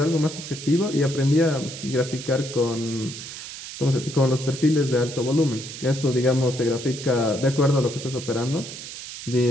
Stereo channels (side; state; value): right; noise; hiss, 11 dB below the sound